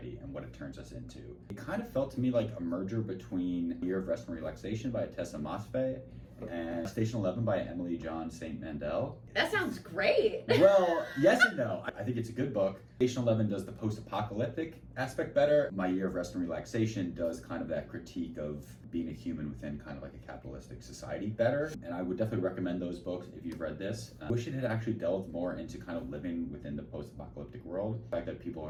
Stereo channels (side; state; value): both; identical; correlation 1.00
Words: and what it turns us into. It kind of felt to me like a merger between Year of Rest and Relaxation by Tessa Mosfe and Station 11 by Emily John St. Mandel. That sounds great. Well, yes and no. I think it's a good book. Station 11 does the post-apocalyptic aspect better. My Year of Rest and Relaxation does kind of that critique of being a human within kind of like a capitalistic society better. And I would definitely recommend those books if you've read this. I wish it had actually delved more into kind of living within the post-apocalyptic world. The fact that people